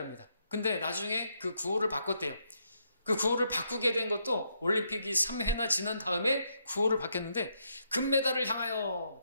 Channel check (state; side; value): inverted; both; correlation -0.77